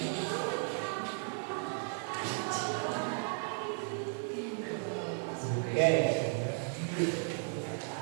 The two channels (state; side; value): silent; left; 54 dB below the other